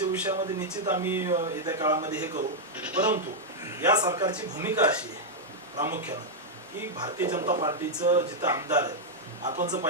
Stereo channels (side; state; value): both; normal; correlation -0.03